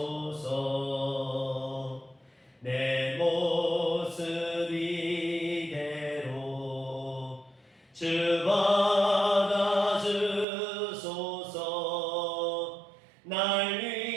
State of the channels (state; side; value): drops out; left; at 10.5 s